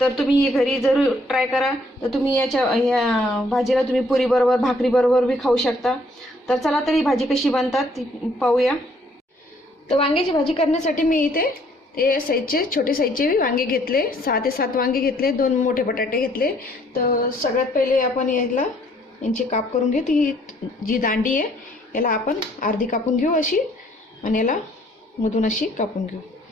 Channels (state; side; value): normal; both; correlation 0.64